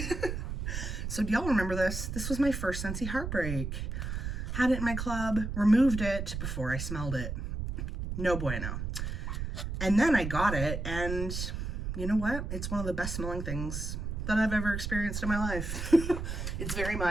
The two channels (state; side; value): noise; right; rumble, 4 dB below the sound